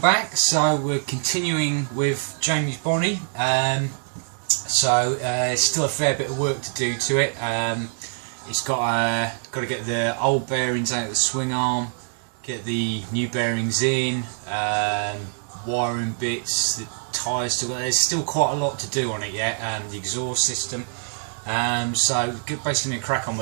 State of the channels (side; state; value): left; silent; digital silence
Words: So we're continuing with Jamie's Bonnie. Still a fair bit of work to do to it. It's got to get the old bearings out of the swing arm, get the new bearings in, wiring bits, the tyres still. There's still quite a lot to do on it yet. The exhaust system. So basically going to crack on